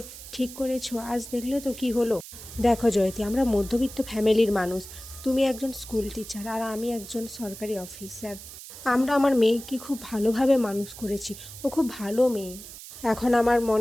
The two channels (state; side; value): noise; right; hiss, 14 dB below the sound